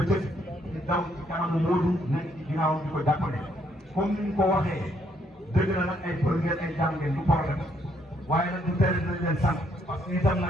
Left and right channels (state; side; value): normal; both; correlation 0.71